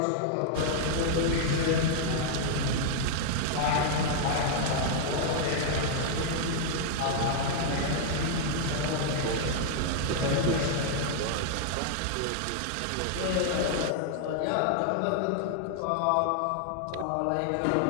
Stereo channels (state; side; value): different; both; correlation 0.00